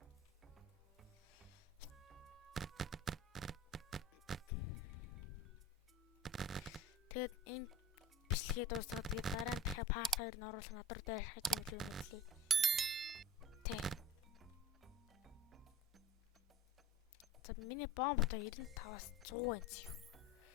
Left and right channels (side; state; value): both; normal; correlation 0.36